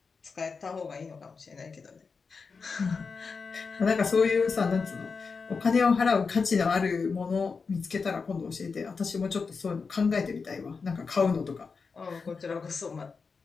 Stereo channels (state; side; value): quieter; right; 5.0 dB